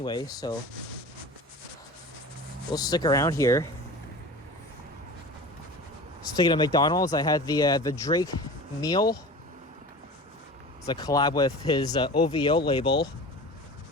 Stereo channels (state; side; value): normal; both; correlation 0.36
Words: so we'll stick around here. Speaking of McDonald's, I had the Drake meal. It's a collab with his OVO label,